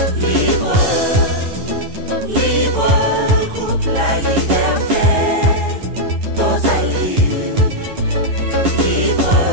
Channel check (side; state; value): left; late; 10 ms